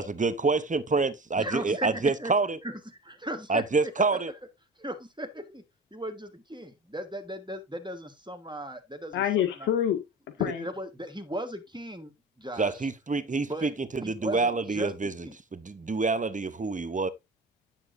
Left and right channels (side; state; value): both; normal; correlation 0.32